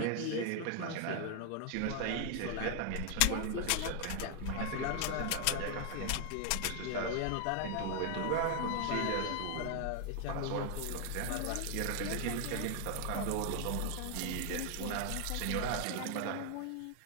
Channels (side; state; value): both; different; correlation 0.00